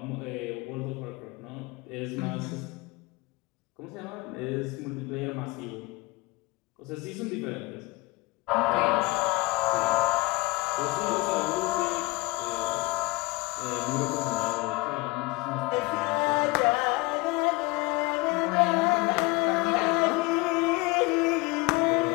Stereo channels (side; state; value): right; quieter; 22.9 dB